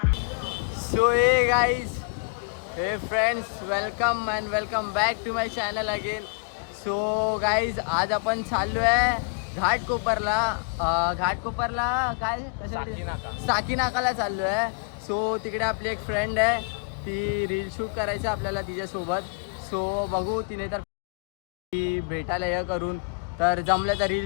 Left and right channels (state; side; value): quieter; right; 39.4 dB